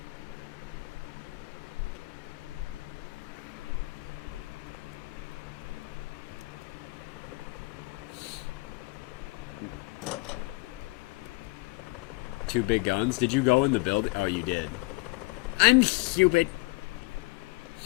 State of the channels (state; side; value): quieter; right; 24.1 dB